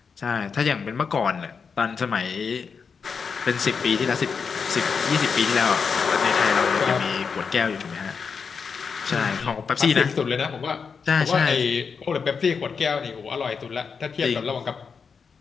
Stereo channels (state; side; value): quieter; right; 5.7 dB